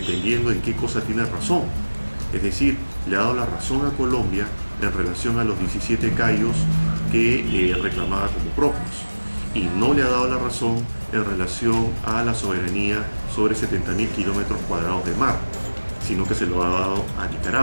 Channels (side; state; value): both; inverted; correlation -1.00